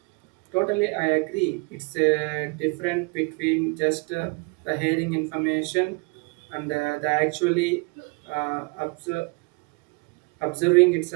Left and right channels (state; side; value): quieter; left; 30.5 dB